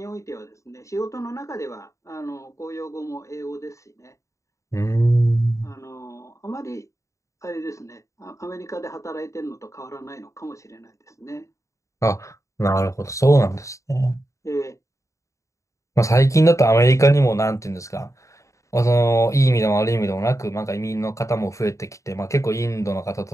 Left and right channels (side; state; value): right; late; 0.15 ms